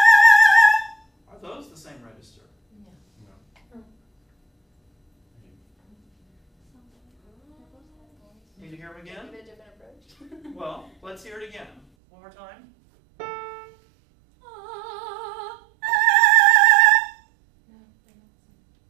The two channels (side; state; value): left; drops out; at 11.8 s